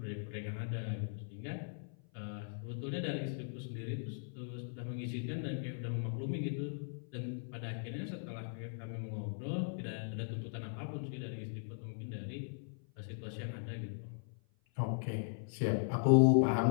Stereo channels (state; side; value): silent; right; 52 dB below the other